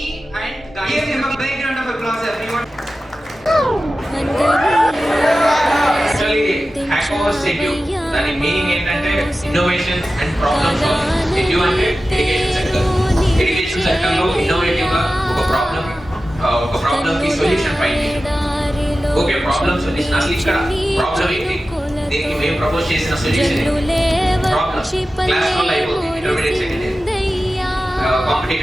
and guys. Give him a big round of applause, everyone. Actually, Hackerverse Edu, దాని meaning ఏంటంటే innovation and problem solving. ఎడ్యు అంటే education sector. Education sector లో innovative గా ఒక problem కి solution find చేయడం. Okay, problem solution అసలు ఇక్కడ ప్రాబ్లం ఏంటి, దీనికి మేము ప్రపోజ్ చేసిన సొల్యూషన్ ప్రాబ్లం క్లాస్ వల్ల అయిపోతుంది. Intermediate second year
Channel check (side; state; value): both; normal; correlation 0.94